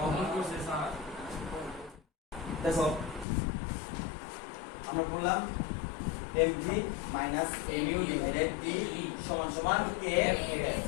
mv minus mu divided t সমান সমান kf।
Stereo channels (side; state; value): right; drops out; at 3.2 s